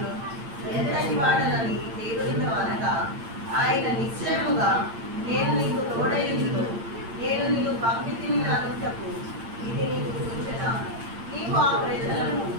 ఎంతటి వాడనని దేవునితో అనగా, ఆయన నిశ్చయముగా నేను నీకు తోడైందును, నేను పంపితిని అనుటకు ఇది నీకు సూచన. నీవు ఆ ప్రజలను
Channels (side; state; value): left; late; 8.8 ms